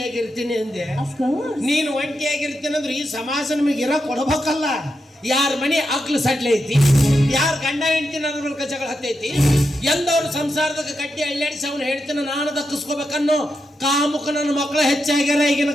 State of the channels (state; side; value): normal; both; correlation 0.86